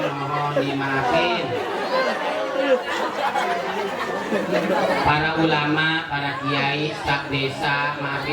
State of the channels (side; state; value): both; identical; correlation 1.00